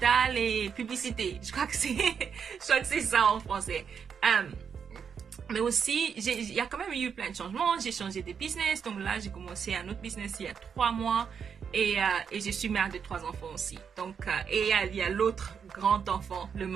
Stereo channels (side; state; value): left; quieter; 6.9 dB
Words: et publicité. Je crois que c'est ça en français. Mais aussi, il y a quand même eu plein de changements. J'ai changé de business. Donc là, j'ai commencé un autre business il y a 3 mois. Et je suis mère de 3 enfants aussi. Donc, et il y a l'autre grand enfant, le